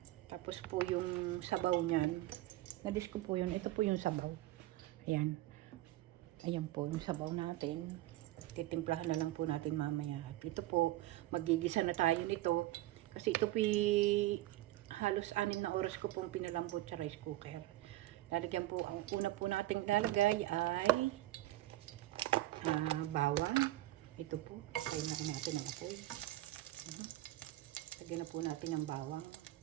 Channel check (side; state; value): left; quieter; 16.2 dB